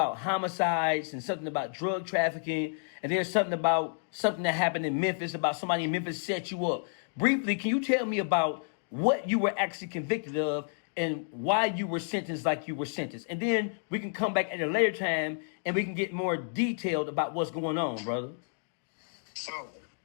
homicides and something about drug trafficking, and there's something about something that happened in Memphis, about somebody in Memphis set you up. Briefly, can you tell me about what you were actually convicted of and why you were sentenced like you were sentenced? And then we can come back at a later time and we can get more detailed about what's going on, brother. So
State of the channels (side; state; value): right; silent; digital silence